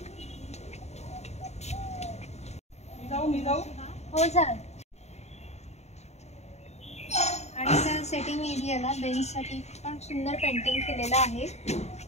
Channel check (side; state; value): right; late; 0.32 ms